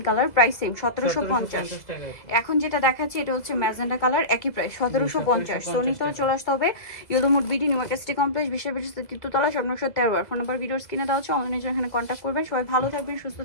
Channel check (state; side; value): late; right; 2.0 ms